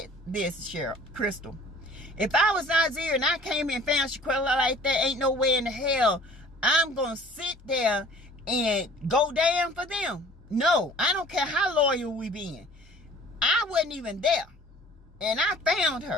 Cheryl, Crystal. If I was Nazir and I came and found Shanquella like that, ain't no way in the hell I'm going to sit there and go down for them. No, I don't care how loyal we been. I wasn't even there. And I found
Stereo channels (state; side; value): normal; both; correlation 0.49